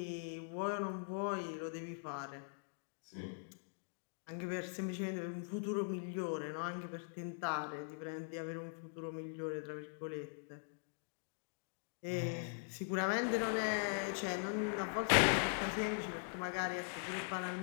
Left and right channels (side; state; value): right; silent; digital silence